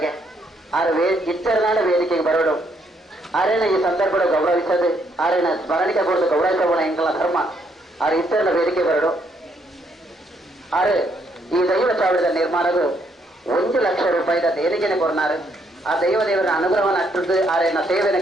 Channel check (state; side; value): normal; both; correlation 0.72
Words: ಆರು ಇಚ್ಚರನಾಡ ವೇದಿಕೆಗೆ ಬರೋಡು ಆರೇನ ಈ ಸಂದರ್ಭ ಗೌರವಿಸದು ಆರೇನ ಸ್ಮರಣಿಕೆ ಕೊಡದು ಗೌರವಿಸೋಣ ಎಂಕಲ ಧರ್ಮ ಆರು ಇಚ್ಚರನ ವೇದಿಕೆ ಬರೋಡು. ಆರು ಈ ದೈವ ಚಾವಡಿದ ನಿರ್ಮಾಣದು 1 ಲಕ್ಷ ರೂಪಾಯಿದ ದೇಣಿಗೆನೆ ಕೊರ್ನಾರು ಆ ದೇವರ ಅನುಗ್ರಹವನ್ನು ಅಟ್ಟದ್ದು ಆರೇನ ಸೇವೆಯನ್ನು